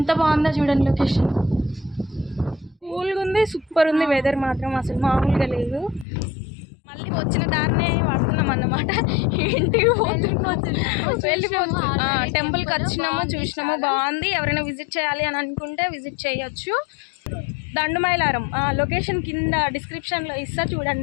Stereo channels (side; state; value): right; drops out; at 6.1 s